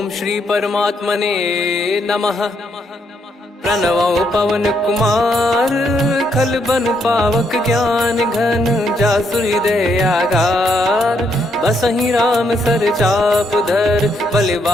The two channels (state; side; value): normal; both; correlation 0.75